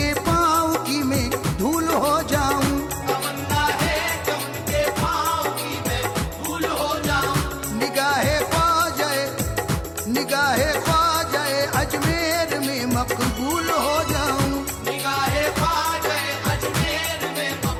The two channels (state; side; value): identical; both; correlation 1.00